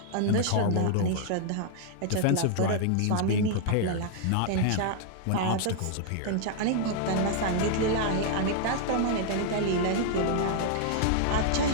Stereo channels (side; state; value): both; different; correlation -0.01